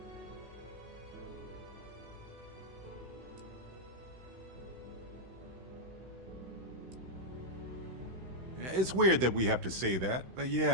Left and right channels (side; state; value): left; late; 16 ms